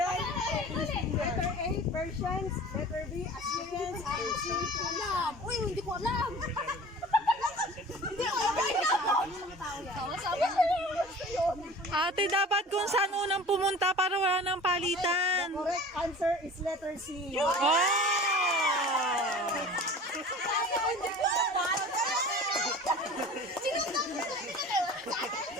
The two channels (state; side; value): normal; both; correlation 0.41